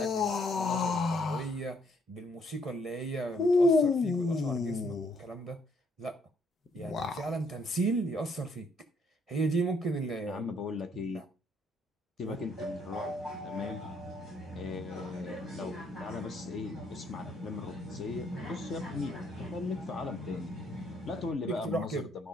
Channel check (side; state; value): both; normal; correlation 0.69